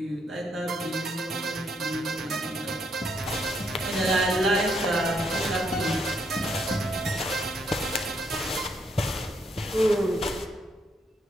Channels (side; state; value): both; normal; correlation 0.74